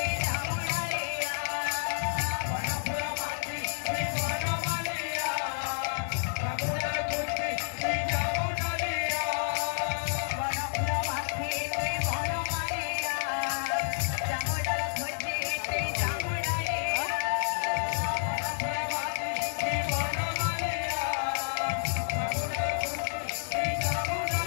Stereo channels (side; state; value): right; silent; 58 dB below the other